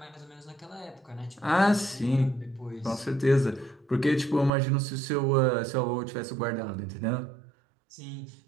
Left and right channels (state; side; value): drops out; left; at 4.5 s